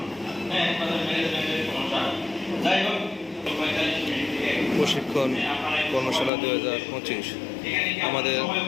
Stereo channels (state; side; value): drops out; right; at 6.3 s